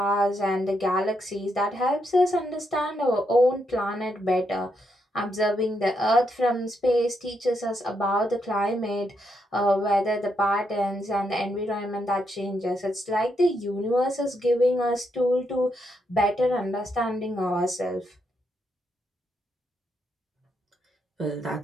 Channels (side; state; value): both; normal; correlation 0.79